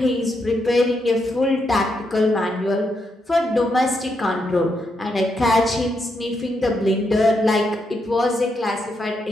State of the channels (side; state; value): both; normal; correlation 0.81